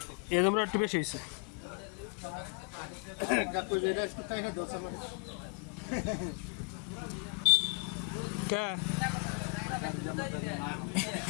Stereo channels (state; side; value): quieter; right; 33.5 dB